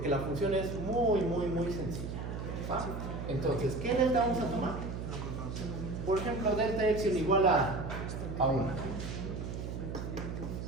la función es muy sencilla. ¿Va? Entonces, ¿qué delta vamos a tomar? Por ejemplo, delta epsilon igual a 1.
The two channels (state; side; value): noise; right; hum, 5 dB below the sound